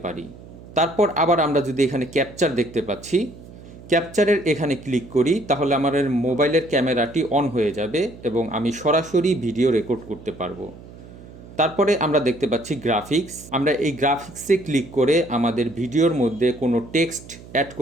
পারি। তারপর আবার আমরা যদি এখানে ক্যাপচার দেখতে পাচ্ছি, ক্যাপচারের এখানে ক্লিক করি তাহলে আমার মোবাইলের ক্যামেরাটি অন হয়ে যাবে এবং আমি সরাসরি ভিডিও রেকর্ড করতে পারবো। তারপরে আমরা দেখতে পাচ্ছি গ্রাফিক্স। আমরা এই গ্রাফিক্সে ক্লিক করে আমাদের ভিডিওর মধ্যে কোনো টেক্সট অ্যাড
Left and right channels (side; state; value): right; noise; hum, 18 dB below the sound